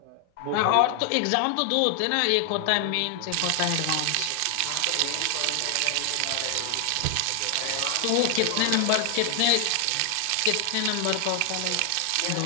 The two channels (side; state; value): both; different; correlation 0.00